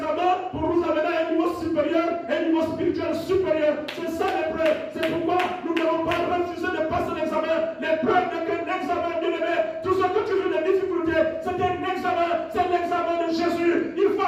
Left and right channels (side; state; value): both; identical; correlation 1.00